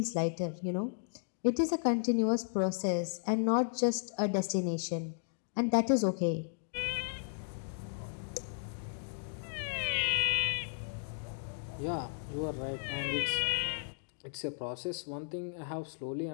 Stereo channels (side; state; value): right; silent; digital silence